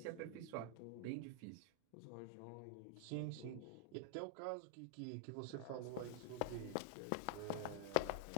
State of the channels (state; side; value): different; both; correlation -0.01